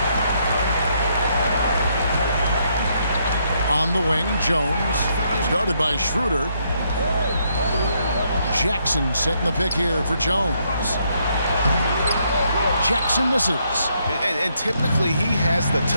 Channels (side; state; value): both; inverted; correlation -0.74